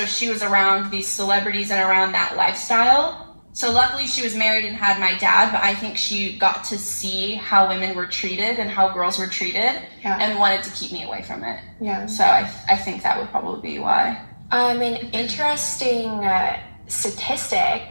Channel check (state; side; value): inverted; both; correlation -1.00